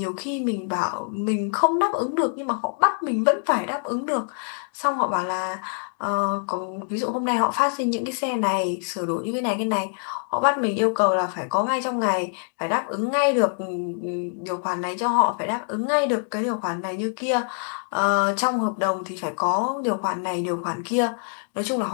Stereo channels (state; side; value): silent; right; 57 dB below the other